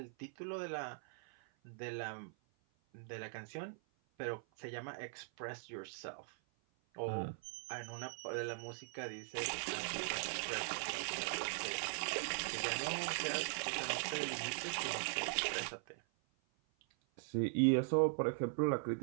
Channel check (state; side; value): silent; left; 51 dB below the other